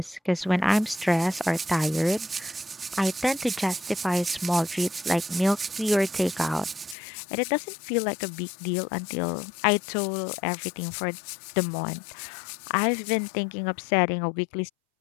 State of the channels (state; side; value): drops out; right; at 7.0 s